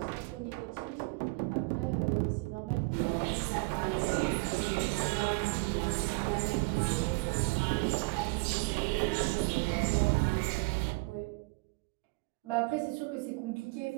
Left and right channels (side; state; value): left; quieter; 28.8 dB